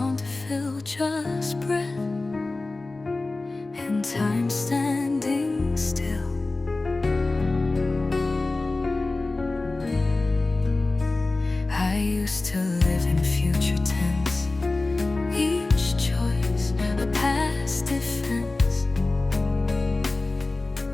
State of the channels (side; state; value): right; quieter; 3.2 dB